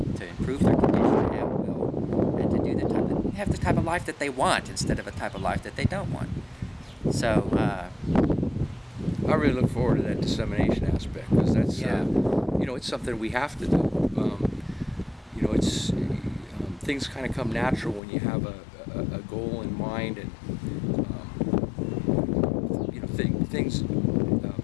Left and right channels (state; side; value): drops out; right; at 18.0 s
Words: to improve their condition at will, and to do have the type of life that they want instead of a type of life that they don't want. So, I really look forward to that dissemination aspect, because that's, Yeah. It's something we have to do. It's things kind of come natural when you have a goal in mind, and things,